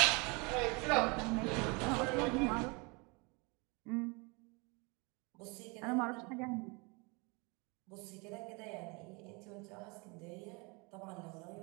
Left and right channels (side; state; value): left; quieter; 29.4 dB